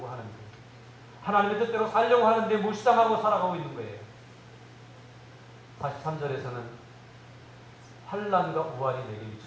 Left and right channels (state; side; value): identical; both; correlation 1.00